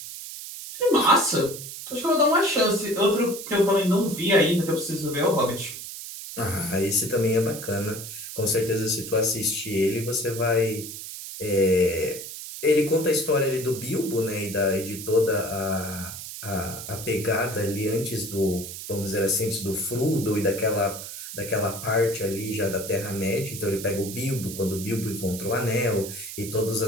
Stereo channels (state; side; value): noise; right; hiss, 10 dB below the sound